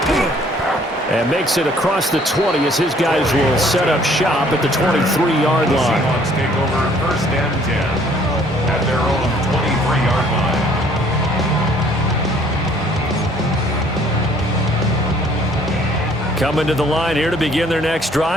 And makes it across the 20 as his guys will set up shop at the 23-yard line. Seahawks take over first and 10 at their own 23-yard line. Coming to the line here to begin their next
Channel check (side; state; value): both; normal; correlation 0.59